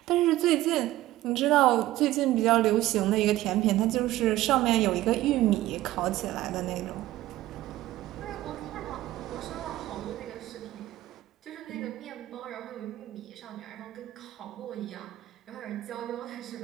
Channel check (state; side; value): quieter; left; 15.7 dB